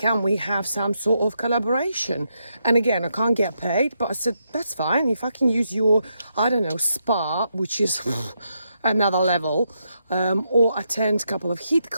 we have some sort of collaboration? And again, I can't get paid, but I said, that's fine. If I can use your, spa, which is another level, or attend a couple of HIIT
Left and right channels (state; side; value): inverted; both; correlation -0.81